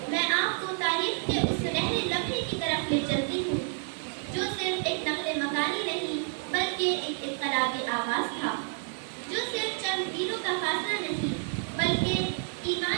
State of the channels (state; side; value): silent; left; 58 dB below the other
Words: میں آپ کو تاریخ کے اس سنہرے لمحے کی طرف لے چلتی ہوں جو صرف ایک نقل مکانی نہیں بلکہ ایک انقلابی آغاز تھا، جو صرف چند میلوں کا فاصلہ نہیں بلکہ